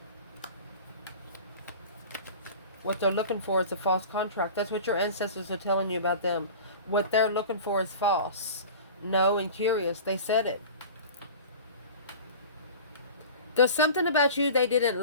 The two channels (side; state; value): both; inverted; correlation -0.37